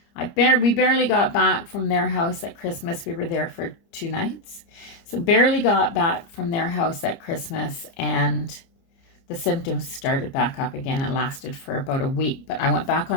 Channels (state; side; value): late; right; 30 ms